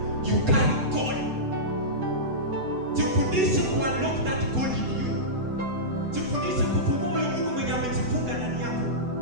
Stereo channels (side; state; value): left; late; 7.9 ms